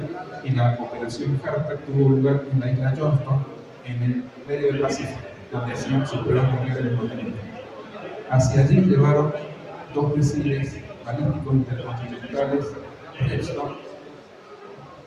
y la operación Hartak tuvo lugar en la isla Johnston, en el medio del Pacífico, donde hacían sus pruebas nucleares los norteamericanos. Hacia allí llevaron 2 misiles balísticos intercontinentales Redstone.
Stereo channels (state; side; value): identical; both; correlation 1.00